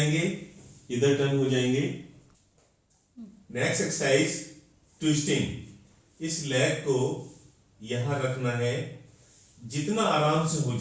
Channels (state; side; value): identical; both; correlation 1.00